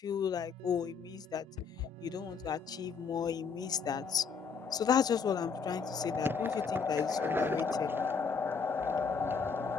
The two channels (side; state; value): right; quieter; 5.7 dB